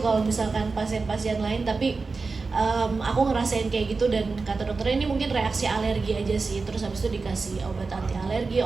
misalkan pasien-pasien lain, tapi aku ngerasain kayak gitu. Dan kata dokternya ini mungkin reaksi alergi aja sih. Terus habis itu dikasih obat anti alergi,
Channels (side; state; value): left; quieter; 4.2 dB